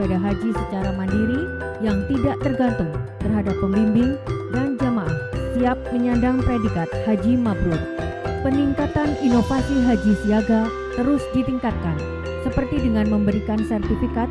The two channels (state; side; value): identical; both; correlation 1.00